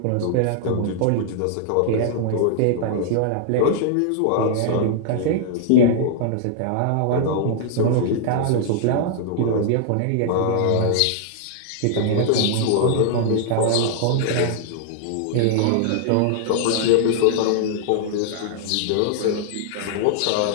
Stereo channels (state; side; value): different; both; correlation -0.01